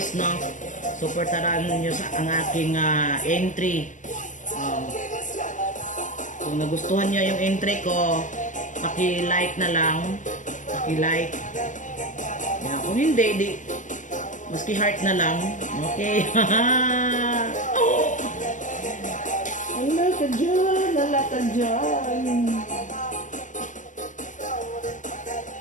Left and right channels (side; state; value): right; late; 0.37 ms